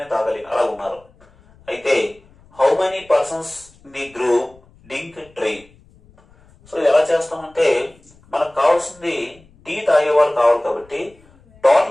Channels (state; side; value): noise; left; rumble, 29 dB below the sound